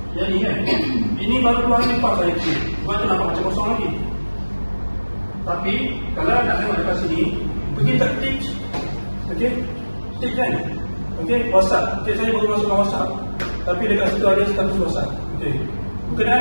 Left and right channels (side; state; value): both; inverted; correlation -1.00